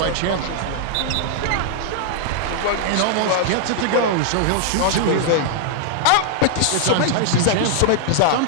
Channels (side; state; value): both; different; correlation -0.01